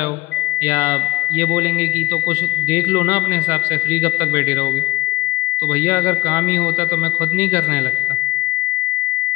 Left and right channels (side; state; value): right; quieter; 19.1 dB